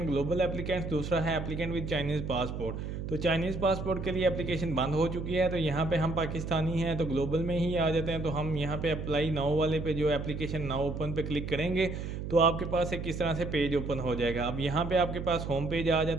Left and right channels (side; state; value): right; noise; hum, 6 dB below the sound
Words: ग्लोबल एप्लीकेंट्स, दूसरा है एप्लीकेंट विद चाइनीज़ पासपोर्ट। तो चाइनीज़ पासपोर्ट के लिए एप्लीकेशन बंद हो चुकी है, तो यहाँ पे हम पाकिस्तानी हैं तो ग्लोबल में ही आ जाते हैं। तो हम यहाँ पे अप्लाई नाउ वाले पे, जो एप्लीकेशन नाउ ओपन पे क्लिक करेंगे तो आपके पास एक किस तरह से पेज ओपन हो जाएगा। अब यहाँ पे आपके पास होम पेज आ